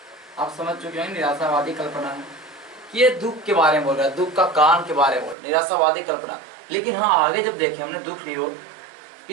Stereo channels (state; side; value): drops out; left; at 5.4 s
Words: आप समझ चुके हैं, निराशावादी कल्पना है कि ये दुख के बारे में बोल रहा है, दुख का कारण के बारे में निराशावादी कल्पना। लेकिन हाँ, आगे जब देखें हमने दुख निरोध,